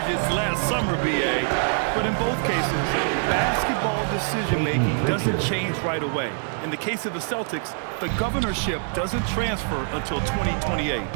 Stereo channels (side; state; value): left; silent; 62 dB below the other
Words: last summer, BA. But in both cases, basketball decision-making doesn't change right away. In the case of the Celtics, the governorship doesn't transfer until 2028.